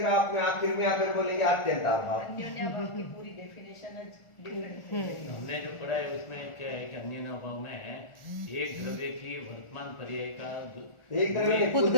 आप में आखिर में आकर बोलेंगे अत्यंत अभाव। अन्योन्याभाव की पूरी डेफिनेशन डिफरेंट है। हमने जो पढ़ा है उसमें क्या है कि अन्य अभाव में एक द्रव्य की वर्तमान पर्याय का एक द्रव्य में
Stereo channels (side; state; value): right; late; 1.4 ms